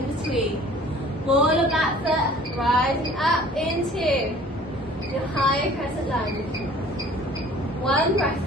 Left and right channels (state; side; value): normal; both; correlation 0.50